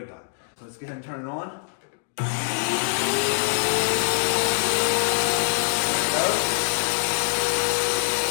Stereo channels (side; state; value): right; silent; digital silence